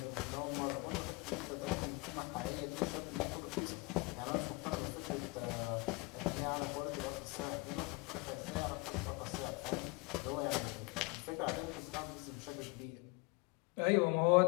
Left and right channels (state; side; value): quieter; right; 27.1 dB